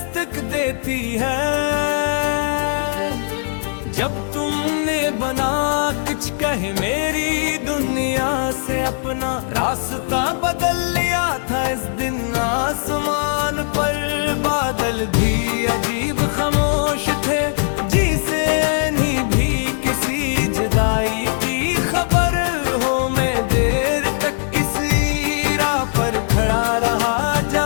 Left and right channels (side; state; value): right; silent; digital silence